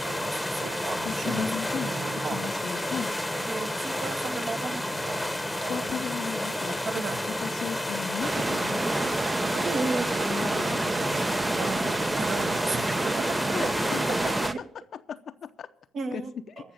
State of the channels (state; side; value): normal; both; correlation 0.90